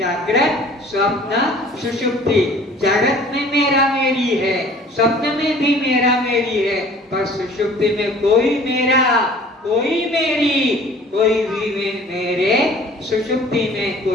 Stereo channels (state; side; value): normal; both; correlation 0.50